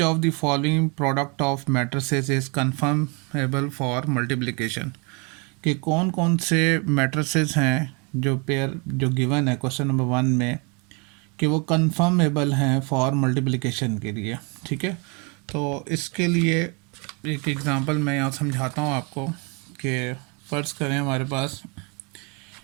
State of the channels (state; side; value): quieter; left; 32.4 dB